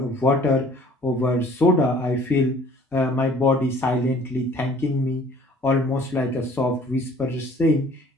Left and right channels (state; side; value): normal; both; correlation 0.54